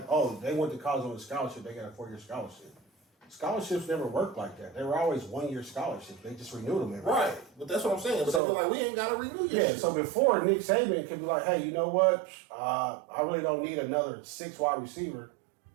oh, they went to college on a scholarship, they got a 4-year scholarship. Scholarships never worked like that. They were always 1-year scholarships. They just renewed them every year. Right, but that's what I'm saying. But So- they feel like we ain't got to renew your Yeah, shit. so before Nick Saban could be like, hey, you know what? I really don't need another 6 wide receiver.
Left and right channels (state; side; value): drops out; left; at 8.4 s